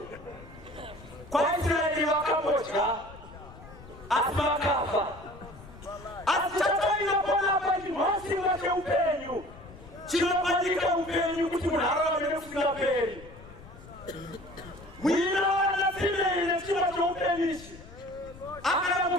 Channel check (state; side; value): noise; left; rumble, 18 dB below the sound